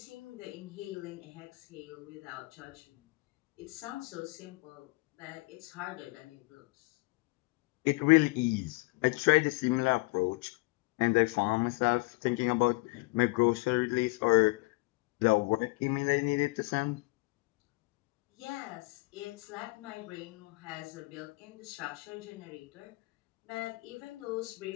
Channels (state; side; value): quieter; right; 25.9 dB